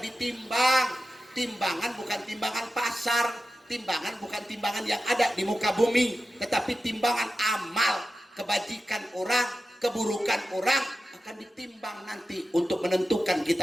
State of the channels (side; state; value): both; normal; correlation 0.92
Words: ditimbang, timbangan bukan timbangan pasar, timbangan bukan timbangan yang ada di muka bumi, tetapi timbangan amal, kebajikan orang, keburukan orang akan ditimbang nanti untuk menentukan